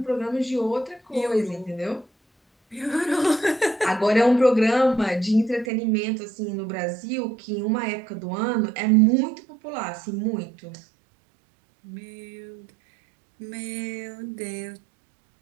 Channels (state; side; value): drops out; left; at 5.7 s